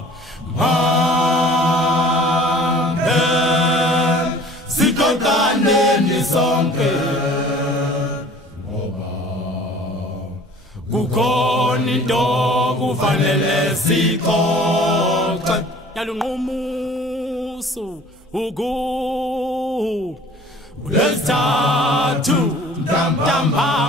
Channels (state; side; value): normal; both; correlation 0.48